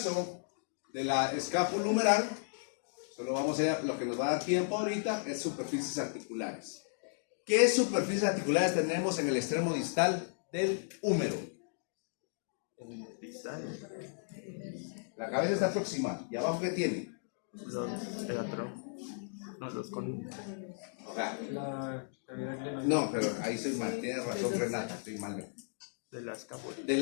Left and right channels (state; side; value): silent; right; digital silence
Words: de la escápula humeral, solo vamos a ver, lo que nos va a dar tiempo ahorita es superficies articulares. ¿Qué superficies articulares tenemos en el extremo distal del húmero? La cabeza está proximal. ¿Y abajo qué tiene? Los con... La cavidad glenoidea. No, pero ahí soy mal. Tiene razón Renata, estoy mal. de la escápula.